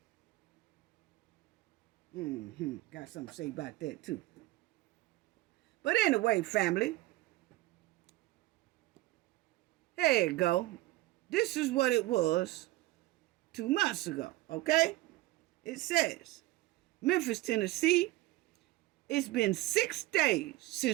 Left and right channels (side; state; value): left; quieter; 18.3 dB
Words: Got something to say about that too. But anyway, family, there you go. This is what it was 2 months ago, okay? It says, Memphis, Tennessee, it's been 6 days